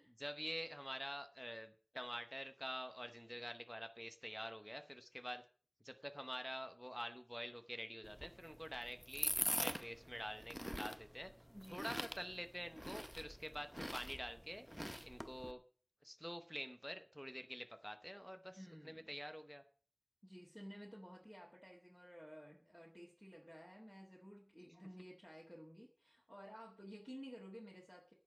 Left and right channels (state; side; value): identical; both; correlation 1.00